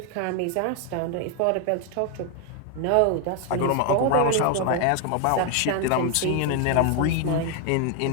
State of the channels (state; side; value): different; both; correlation 0.01